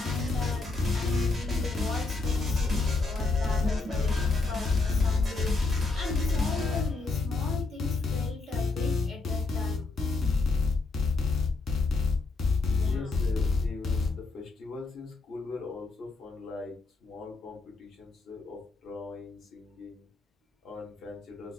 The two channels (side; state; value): right; quieter; 3.7 dB